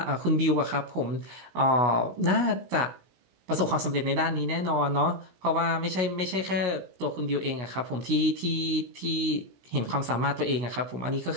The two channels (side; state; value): left; late; 16 ms